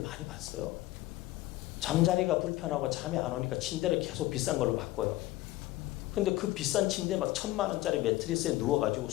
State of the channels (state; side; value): quieter; right; 17.3 dB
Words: 봤어요. 잠자리가 불편하고 잠이 안 오니까 침대를 계속 비싼 걸로 바꿔요. 근데 그 비싼 침대 막 1,000만 원짜리 매트리스에 누워가지고